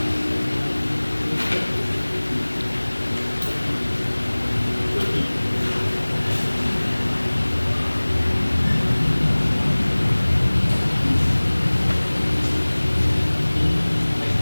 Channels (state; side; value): inverted; both; correlation -1.00